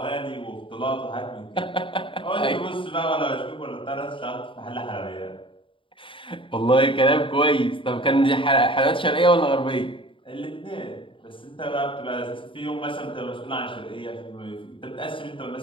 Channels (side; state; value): right; late; 0.25 ms